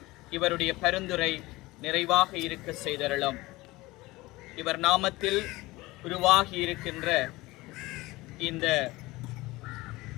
இவருடைய பரிந்துரை நிறைவாக இருக்க செய்தருளும். இவர் நாமத்தில் உருவாகி இருக்கின்ற இந்த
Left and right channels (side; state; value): right; quieter; 20.4 dB